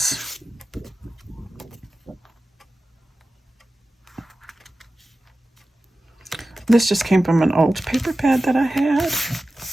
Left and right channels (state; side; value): normal; both; correlation 0.94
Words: this just came from an old paper pad that I had.